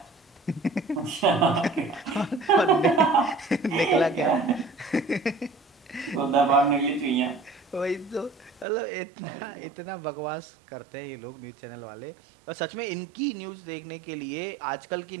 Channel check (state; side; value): drops out; left; at 8.7 s